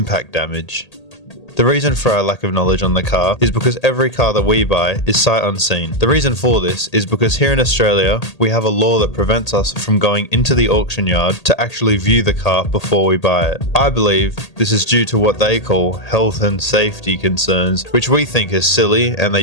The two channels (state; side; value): late; right; 1.8 ms